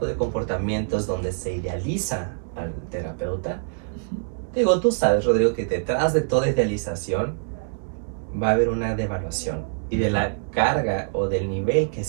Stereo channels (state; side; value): silent; left; digital silence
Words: de comportamientos donde se idealiza al terapeuta, digo, tú sabes, Rodrigo, que detrás de toda idealización va a haber una devaluación y de la carga o del nivel que